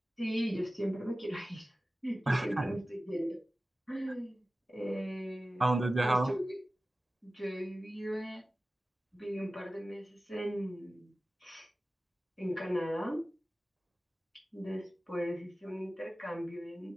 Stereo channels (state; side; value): normal; both; correlation 0.96